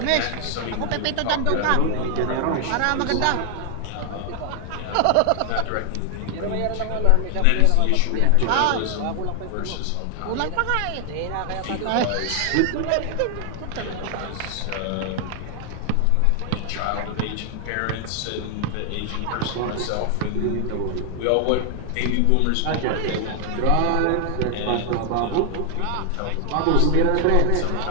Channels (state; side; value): different; both; correlation 0.00